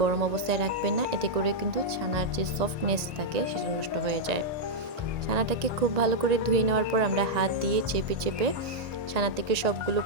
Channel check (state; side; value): late; left; 1.9 ms